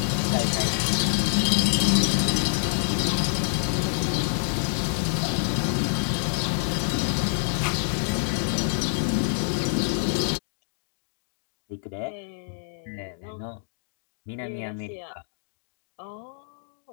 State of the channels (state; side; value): silent; right; digital silence